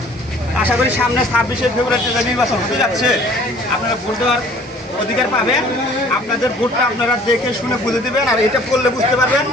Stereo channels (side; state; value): both; normal; correlation 0.53